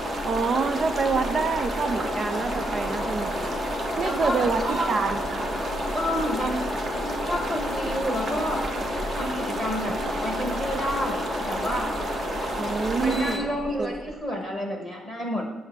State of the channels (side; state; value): both; normal; correlation 0.77